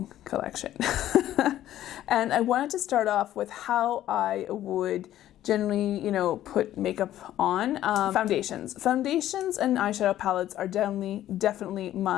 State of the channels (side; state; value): right; quieter; 12.9 dB